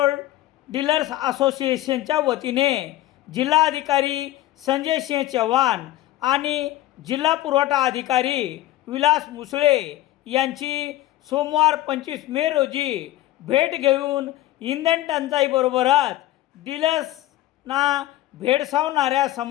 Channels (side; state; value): right; quieter; 15.3 dB